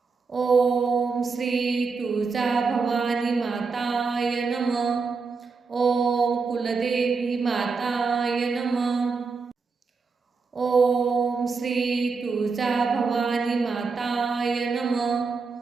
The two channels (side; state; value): left; quieter; 4.7 dB